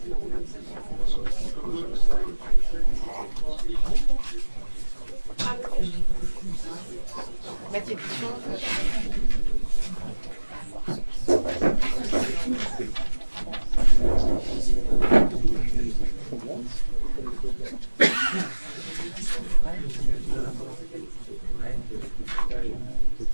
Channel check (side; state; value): both; inverted; correlation -1.00